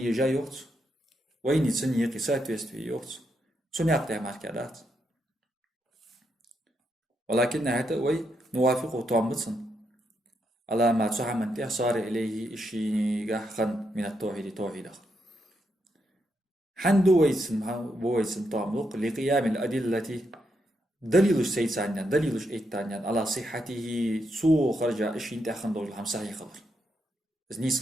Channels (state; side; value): normal; both; correlation 0.81